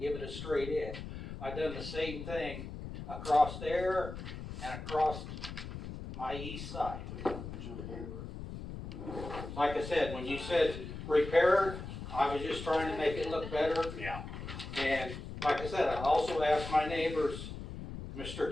give it a straight edge. I done the same thing across there and across my east side. Like I said, when you said repair, I was just trying to make it look better. Yeah, And like I said, I also asked my neighbors, Mr.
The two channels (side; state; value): left; noise; rumble, 9 dB below the sound